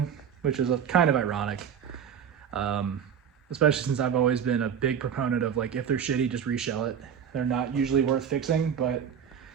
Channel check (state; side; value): quieter; left; 8.0 dB